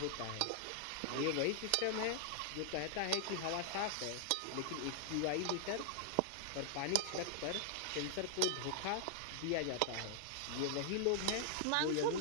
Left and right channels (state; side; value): different; both; correlation -0.01